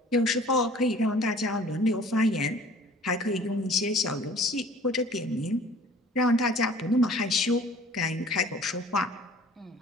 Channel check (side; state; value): both; normal; correlation 0.49